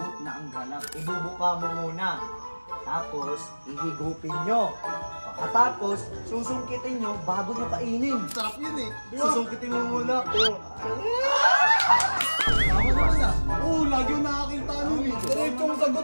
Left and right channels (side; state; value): both; inverted; correlation -1.00